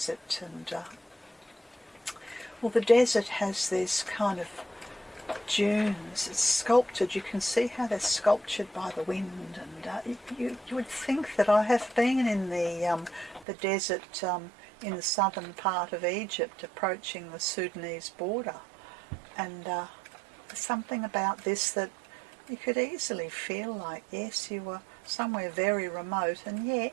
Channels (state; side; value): drops out; left; at 13.5 s